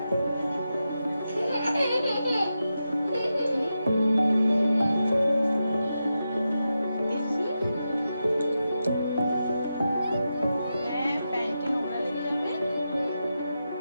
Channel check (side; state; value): both; inverted; correlation -0.89